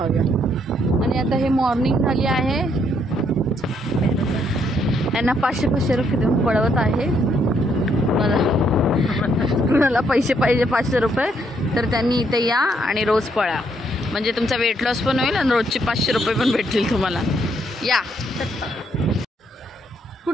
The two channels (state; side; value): normal; both; correlation 0.72